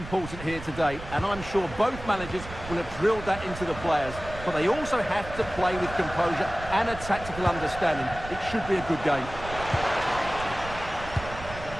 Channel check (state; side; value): noise; right; rumble, 12 dB below the sound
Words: here today, and I'm sure both managers will have drilled that into the players. But they also have to play with composure and a tactical understanding. It should be a good game.